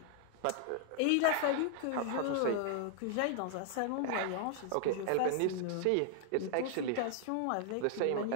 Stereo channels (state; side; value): different; both; correlation -0.01